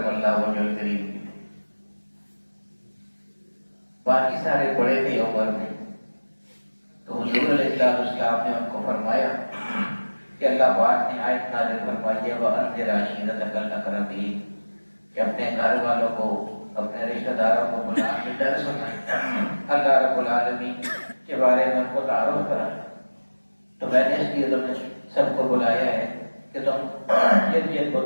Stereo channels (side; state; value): both; inverted; correlation -1.00